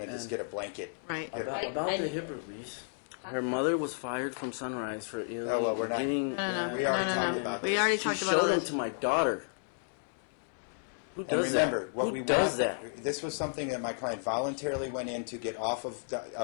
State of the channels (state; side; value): silent; right; 56 dB below the other